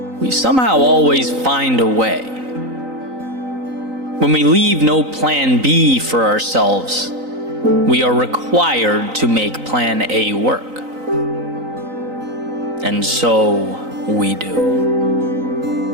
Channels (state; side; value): late; left; 3.9 ms